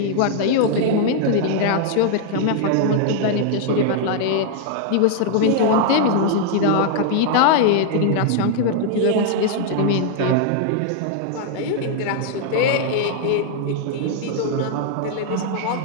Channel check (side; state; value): both; different; correlation -0.01